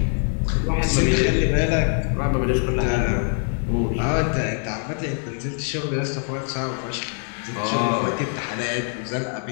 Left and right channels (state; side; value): silent; right; 56 dB below the other